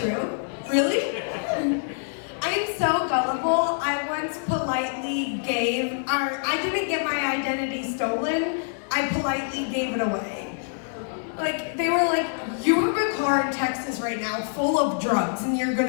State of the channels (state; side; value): silent; right; 61 dB below the other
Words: Really? I am so gullible. I once politely I didn't get my identity stolen. I politely gave it away. Like, they were like, you have a car in Texas right now full of drugs and you're